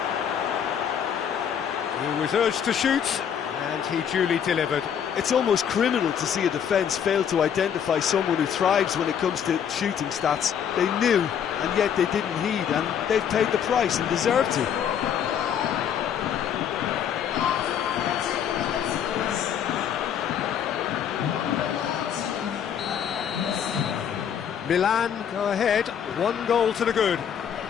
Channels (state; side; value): quieter; right; 8.5 dB